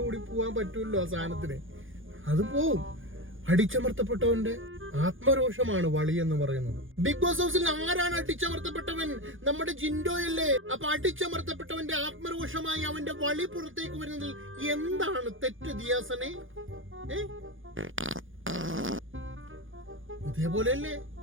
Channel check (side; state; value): left; late; 0.58 ms